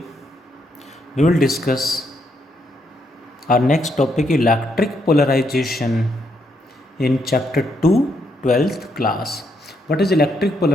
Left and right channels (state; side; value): normal; both; correlation 0.76